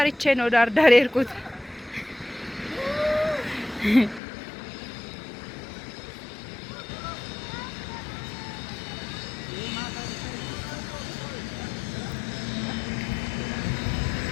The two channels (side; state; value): right; drops out; at 4.2 s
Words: ነው ዳር የሄድኩት